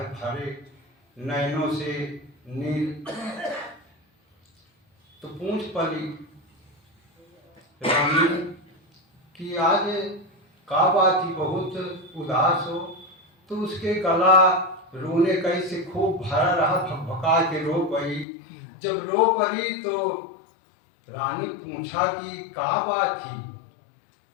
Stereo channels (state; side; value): drops out; right; at 18.2 s